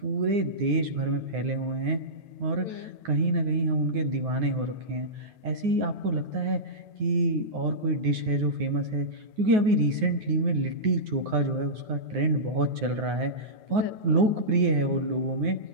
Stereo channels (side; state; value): left; late; 9.5 ms